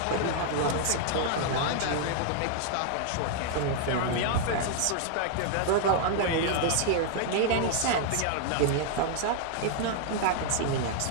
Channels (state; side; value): different; both; correlation 0.00